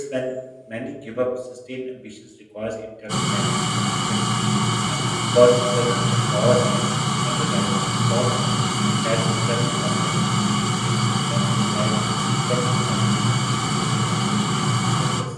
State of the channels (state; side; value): identical; both; correlation 1.00